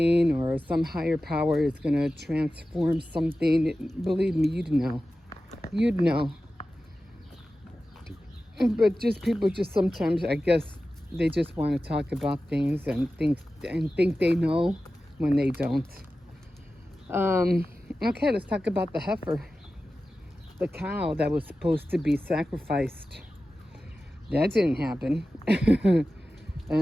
or some higher power is going to transform something, believe me, you'd know. You'd know. But just people just sometimes, I guess, they just want to talk about things and think they know when they don't. Okay, let's talk about the heifer. The cow that was supposed to be sacrificed. That didn't happen.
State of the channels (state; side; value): normal; both; correlation 0.94